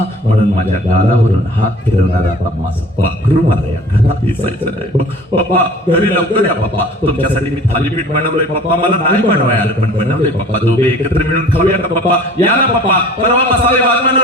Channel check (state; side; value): normal; both; correlation 0.47